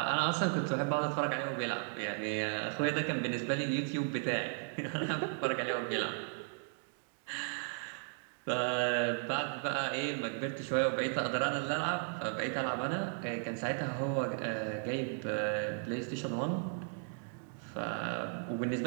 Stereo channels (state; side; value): silent; left; 54 dB below the other